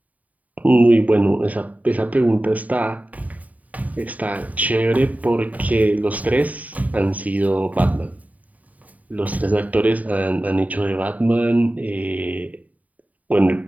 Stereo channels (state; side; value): late; left; 0.072 ms